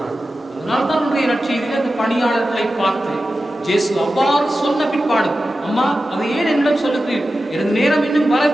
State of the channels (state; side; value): normal; both; correlation 0.93